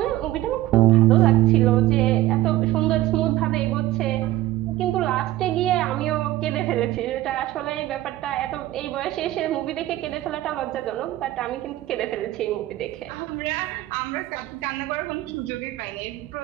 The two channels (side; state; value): left; quieter; 15.7 dB